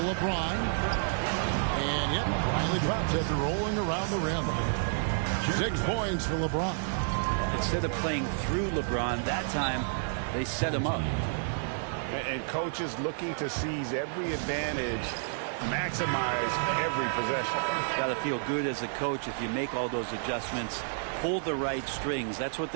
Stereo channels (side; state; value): left; silent; 58 dB below the other